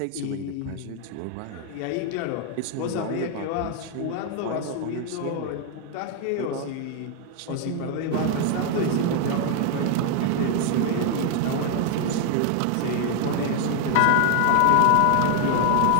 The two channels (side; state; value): both; different; correlation 0.00